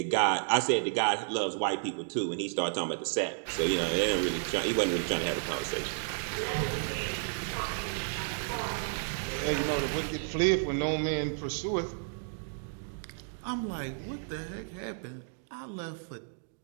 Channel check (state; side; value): silent; left; digital silence